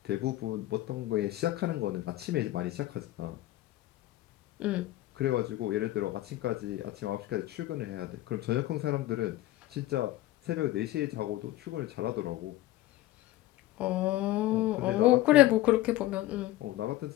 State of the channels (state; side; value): quieter; right; 15.8 dB